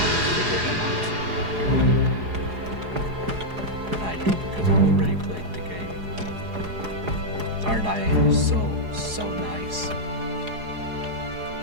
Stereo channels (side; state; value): left; late; 4.8 ms